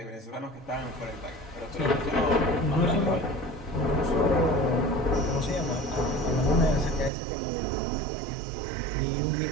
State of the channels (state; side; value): drops out; left; at 7.1 s